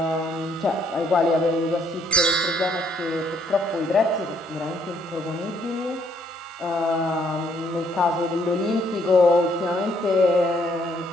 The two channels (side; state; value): both; normal; correlation 0.68